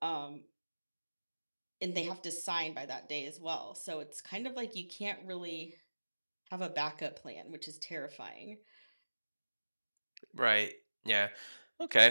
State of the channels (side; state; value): both; inverted; correlation -1.00